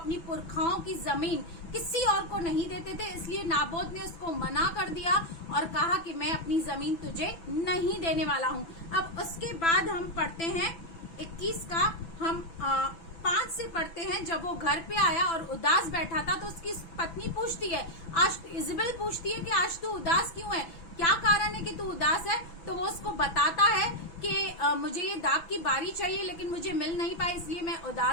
पुरखाओं की जमीन किसी और को नहीं देते थे, इसलिए नाबोत ने उसको मना कर दिया और कहा कि मैं अपनी जमीन तुझे नहीं देने वाला हूँ। अब उसके बाद हम पढ़ते हैं 21 का, हम 5 से पढ़ते हैं। जब वो घर पे आया और उदास बैठा था, तो उसकी पत्नी पूछती है, आज इजबेल पूछती है कि आज तू उदास क्यों है, क्या कारण है कि तू उदास है। तो वो उसको बताता है कि मुझे ये दाख की बारी चाहिए, लेकिन मुझे मिल नहीं पाई, इसलिए मैं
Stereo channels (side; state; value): right; late; 6.0 ms